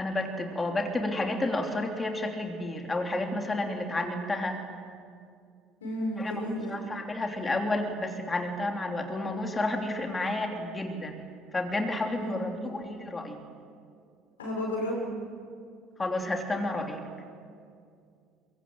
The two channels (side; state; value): both; normal; correlation 0.77